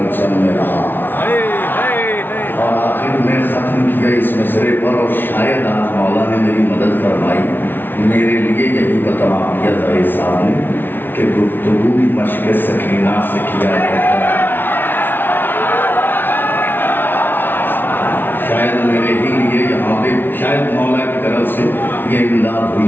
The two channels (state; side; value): late; right; 0.098 ms